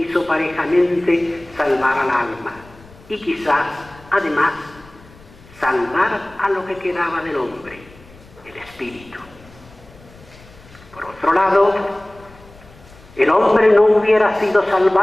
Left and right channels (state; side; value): noise; left; rumble, 24 dB below the sound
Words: parejamente salvar al alma y quizás, además, salvar a lo que quedaba del hombre, el espíritu. Por otro lado, el hombre no hubiera sido